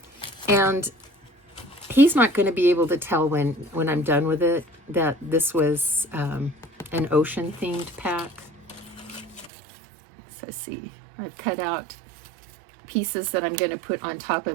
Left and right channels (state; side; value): drops out; left; at 9.5 s